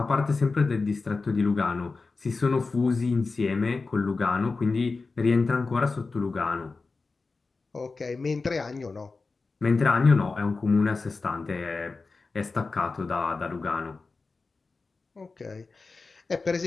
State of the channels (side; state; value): right; quieter; 4.0 dB